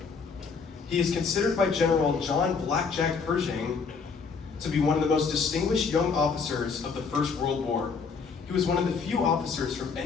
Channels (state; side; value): quieter; right; 5.3 dB